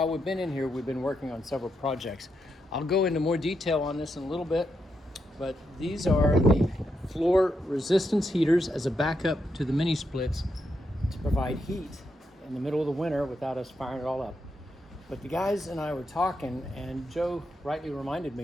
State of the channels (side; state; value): both; normal; correlation 0.83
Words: we've been in here, we've been working on several projects. I'll go into more detail on this in a little bit, but these are the floor resistance heaters as a backup to the mini splits to provide heat in the middle of the winter without us firing it all up. But the guys and I were talking, and Joe rightly reminded